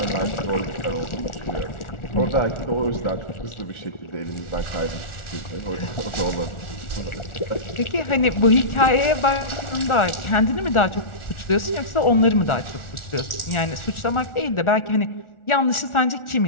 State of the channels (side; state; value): right; late; 1.4 ms